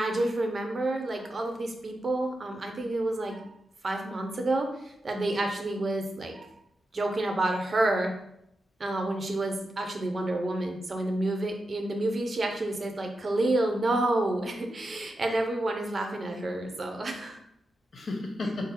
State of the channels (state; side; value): normal; both; correlation 0.89